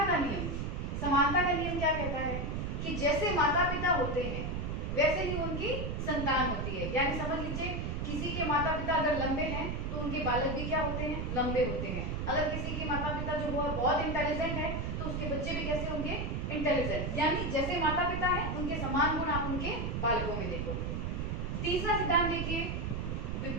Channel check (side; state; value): right; noise; rumble, 2 dB below the sound